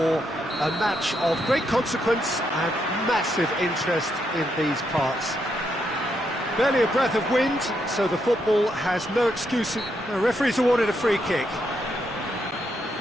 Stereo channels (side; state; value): both; normal; correlation 0.79